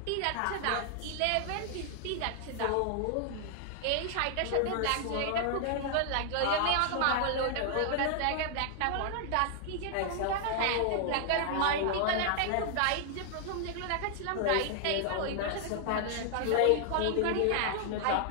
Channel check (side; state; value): both; different; correlation 0.00